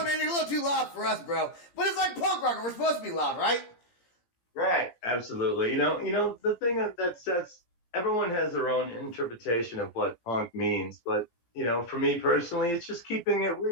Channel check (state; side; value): late; right; 17 ms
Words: man, you're a little too loud for us, bro. But it's like punk rock, we're supposed to be loud, right? Right, absolutely. The thing that sets, everyone has their own interpretation of what punk means. But, for me personally, it's just keeping it